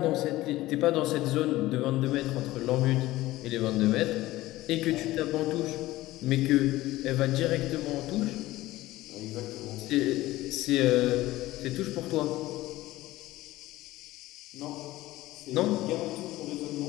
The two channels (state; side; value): quieter; right; 17.2 dB